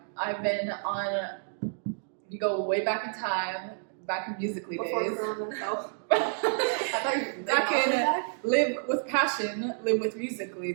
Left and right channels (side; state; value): left; silent; digital silence